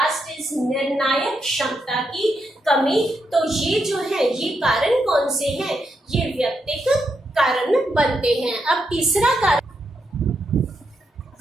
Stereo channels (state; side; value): normal; both; correlation 0.82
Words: इज निर्णायक क्षमता की कमी। तो ये जो है ये कारण कौन से हैं, ये व्यक्तिगत कारण बनते हैं। अब तीसरा कारण